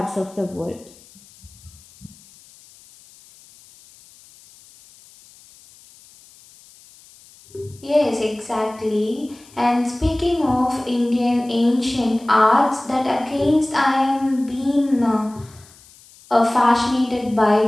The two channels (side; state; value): left; noise; hiss, 25 dB below the sound